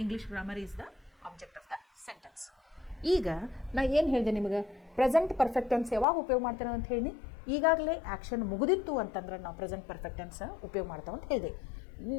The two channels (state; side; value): drops out; right; at 6.1 s